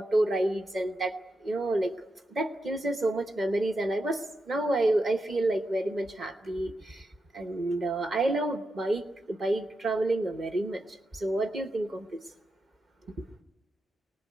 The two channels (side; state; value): both; normal; correlation 0.87